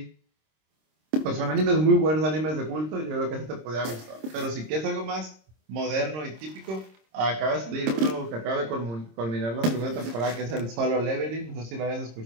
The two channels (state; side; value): late; left; 26 ms